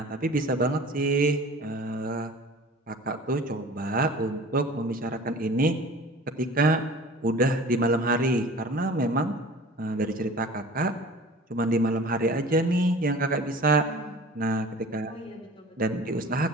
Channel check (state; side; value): normal; both; correlation 0.42